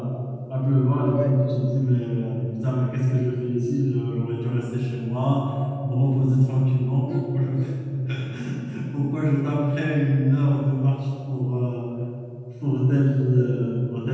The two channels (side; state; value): both; identical; correlation 1.00